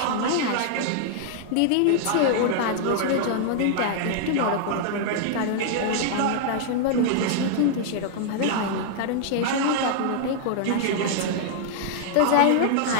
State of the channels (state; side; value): different; both; correlation -0.01